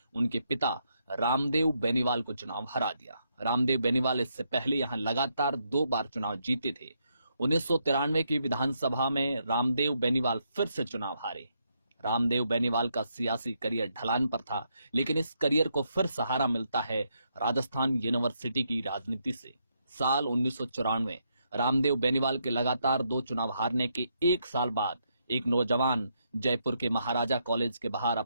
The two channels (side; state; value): both; inverted; correlation -0.78